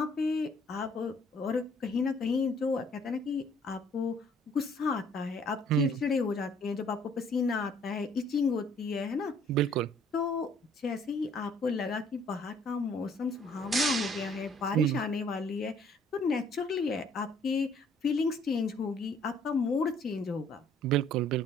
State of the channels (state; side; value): normal; both; correlation 0.60